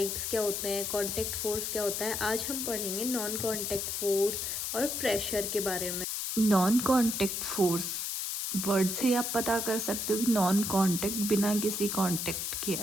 क्या होते हैं, कांटेक्ट फोर्स क्या होता है। आज हम पढ़ेंगे नॉन कांटेक्ट फोर्स और प्रेशर के बारे में। नॉन कांटेक्ट फोर्स वर्ड से आप पता कर सकते हो कि नॉन कांटेक्ट बिना किसी कांटेक्ट के।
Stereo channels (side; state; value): left; noise; hiss, 2 dB below the sound